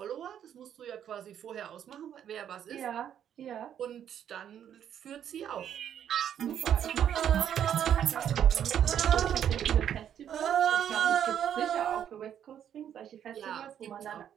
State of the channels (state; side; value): quieter; left; 9.6 dB